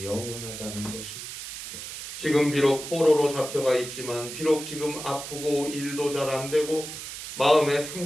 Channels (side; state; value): right; noise; hiss, 9 dB below the sound